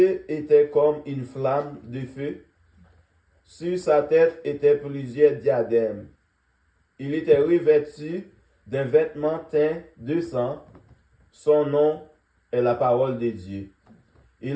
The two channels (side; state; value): both; identical; correlation 1.00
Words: étaient comme une flamme de feu, sur sa tête étaient plusieurs diadèmes. Il était revêtu d'un vêtement teint de sang, son nom est la parole de Dieu.